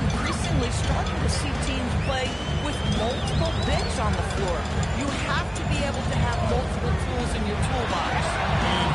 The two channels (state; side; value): identical; both; correlation 1.00